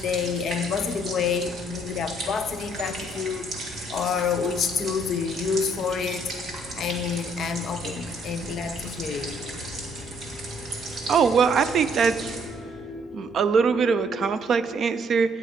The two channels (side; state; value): both; normal; correlation 0.65